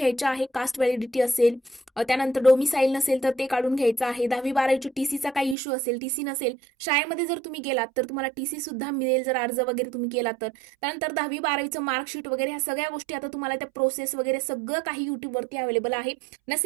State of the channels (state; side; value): drops out; left; at 5.6 s